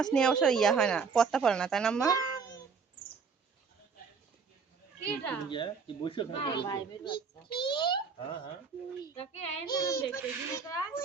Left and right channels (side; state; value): left; quieter; 5.5 dB